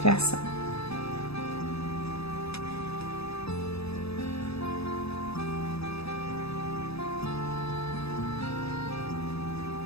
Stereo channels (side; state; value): right; late; 0.78 ms